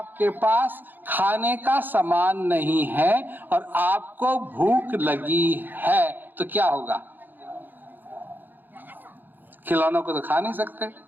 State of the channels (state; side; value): late; left; 0.090 ms